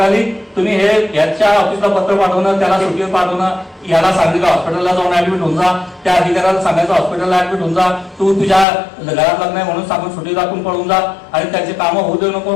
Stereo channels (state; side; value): drops out; right; at 8.7 s